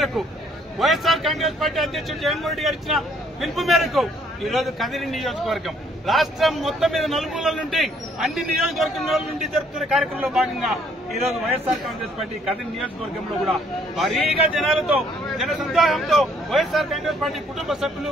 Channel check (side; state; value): both; normal; correlation 0.64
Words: వైఎస్ఆర్ కాంగ్రెస్ పార్టీ అధ్యక్షుడు జగన్మోహన్ రెడ్డి గారు ఇచ్చిన పిలుపు మేరకు ఈ రోజు కదిరి నియోజకవర్గం రాష్ట్రం మొత్తం మీద నలుమూలల నుండి అన్ని నియోజకవర్గంలో నుండి జరుపుతున్న కార్యక్రమంలో భాగంగా ఈ రోజు వైఎస్ఆర్ కాంగ్రెస్ పార్టీ కదిరి నియోజకవర్గంలో కూడా భారీగా జనాలతో, జన సందోహంతో వైఎస్ఆర్ కాంగ్రెస్ పార్టీ కుటుంబ